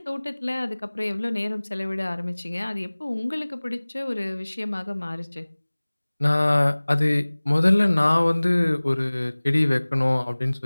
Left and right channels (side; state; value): both; inverted; correlation -1.00